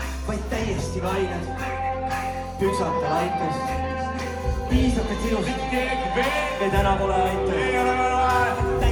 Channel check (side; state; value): both; identical; correlation 1.00